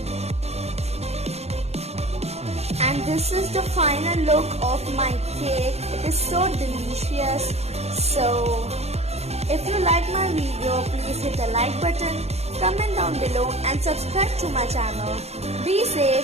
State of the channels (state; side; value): late; left; 0.31 ms